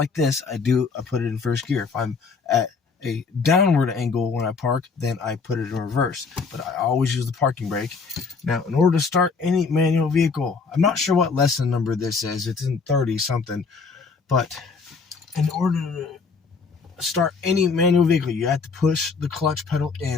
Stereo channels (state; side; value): quieter; right; 4.9 dB